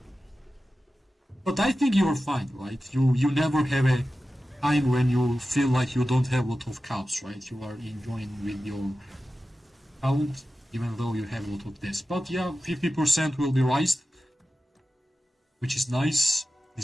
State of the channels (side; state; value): both; normal; correlation 0.94